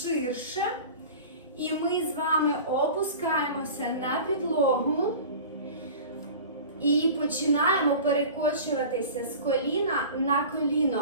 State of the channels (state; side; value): inverted; both; correlation -0.38